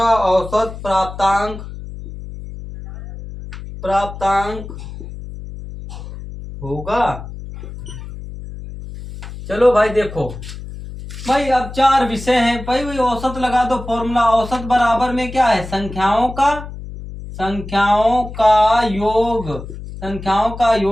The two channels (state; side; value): noise; left; hum, 11 dB below the sound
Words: औसत प्राप्तांक होगा। चलो भाई देखो, भाई अब 4 विषय हैं, भाई वही औसत लगा दो, फॉर्मूला औसत बराबर में क्या है, संख्याओं का